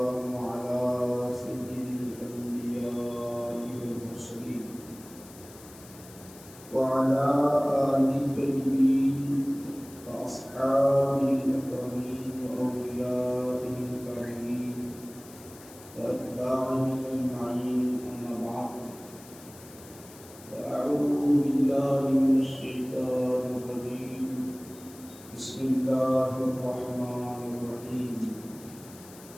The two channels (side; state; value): left; noise; hiss, 20 dB below the sound